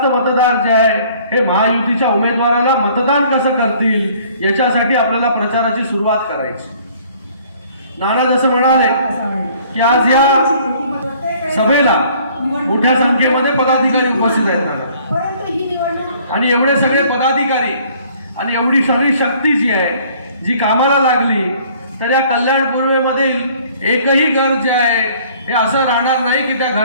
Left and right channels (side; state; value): both; inverted; correlation -0.56